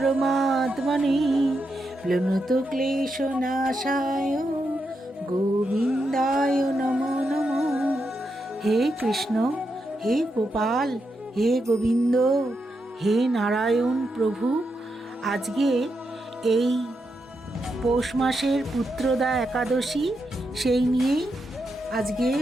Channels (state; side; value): normal; both; correlation 0.84